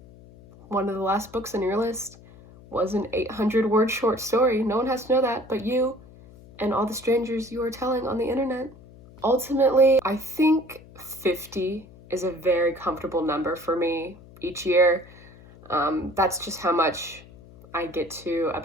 one of the last books on your list was an 800-word short story. No one has to know that but you and all the strangers you are telling on the internet. Ultimately, I think 50 is a very comfortable number for me each year. That's just how much I get to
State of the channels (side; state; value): left; noise; hum, 21 dB below the sound